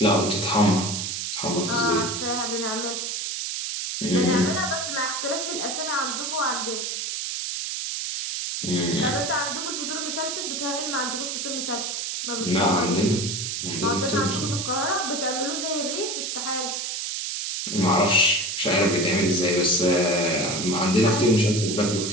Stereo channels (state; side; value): noise; right; hiss, 3 dB below the sound